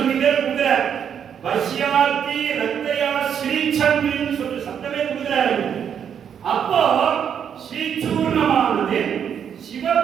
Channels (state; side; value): quieter; left; 8.2 dB